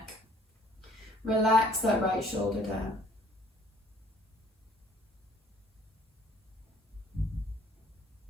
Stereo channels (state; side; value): normal; both; correlation 0.58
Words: Relax that right shoulder down.